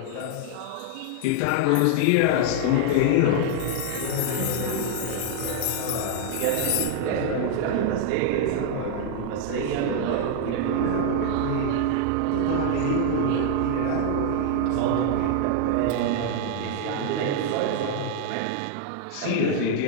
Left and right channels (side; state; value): both; different; correlation 0.00